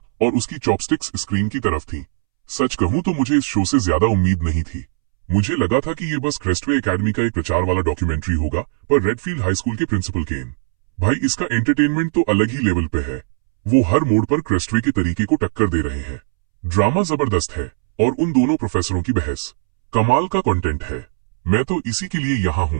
और उसकी चॉपस्टिक्स स्क्रीन की तरफ थी। सच कहूं तो मुझे इस शो से ज्यादा उम्मीद नहीं थी। मुझे लगा था कि ये बस क्रेस्टवे एकेडमी का एक प्रचार वाला डॉक्यूमेंट्री होगा, पर रेडफील्ड हाई स्कूल के प्रिंसिपल केन, भाई इसका एंटरटेनमेंट तो अलग ही लेवल पे है। वो हर मोड़ पर क्रेस्टवे के तरीके को टक्कर दे रहे हैं। ड्रामा जबरदस्त है और उन दोनों प्रोफेसरों की बहस कमाल का कंटेंट है। मैं तो इसी के लिए यहाँ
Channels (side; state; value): left; silent; 66 dB below the other